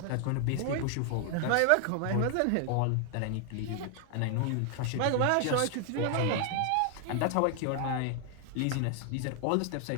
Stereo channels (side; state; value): both; different; correlation 0.00